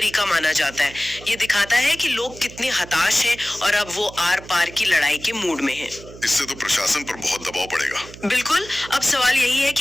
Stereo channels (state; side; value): noise; right; hum, 17 dB below the sound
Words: माना जाता है। ये दिखाता है कि लोग कितने हताश हैं और अब वो आर पार की लड़ाई के मूड में हैं। इससे तो प्रशासन पर बहुत दबाव पड़ेगा। बिल्कुल, अब सवाल यही है